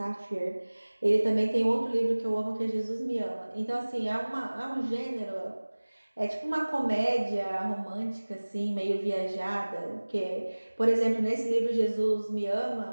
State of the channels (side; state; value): both; inverted; correlation -1.00